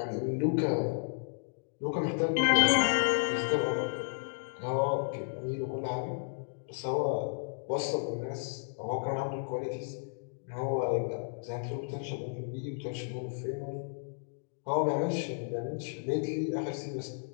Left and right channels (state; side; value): silent; right; digital silence